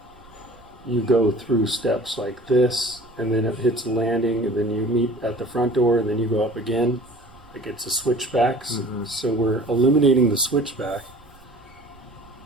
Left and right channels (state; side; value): noise; right; rumble, 27 dB below the sound